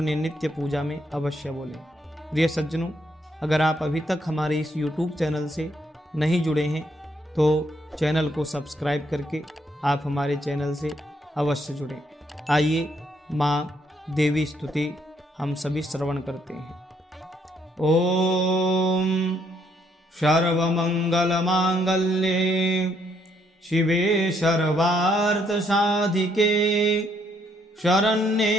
नित्य पूजा में अवश्य बोलें। प्रिय सज्जनों, अगर आप अभी तक हमारे इस YouTube चैनल से नहीं जुड़े हैं तो चैनल को सब्सक्राइब करके आप हमारे चैनल से अवश्य जुड़ें। आइए माँ देवी स्तुति हम सभी श्रवण करते हैं। ओम सर्वमंगलमांगल्ये शिवे सर्वार्थसाधिके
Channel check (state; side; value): normal; both; correlation 0.72